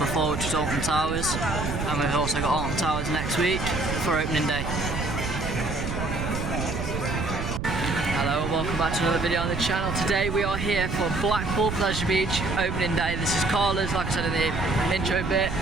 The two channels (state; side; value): noise; right; rumble, 4 dB below the sound